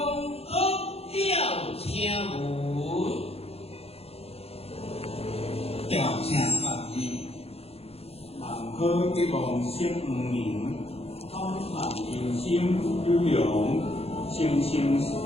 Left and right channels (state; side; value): late; right; 0.29 ms